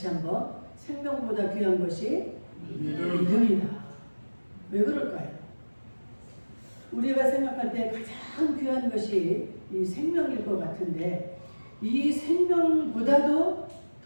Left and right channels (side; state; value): both; inverted; correlation -1.00